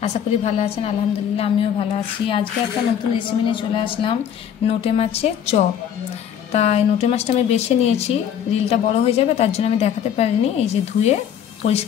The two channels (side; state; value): right; quieter; 9.0 dB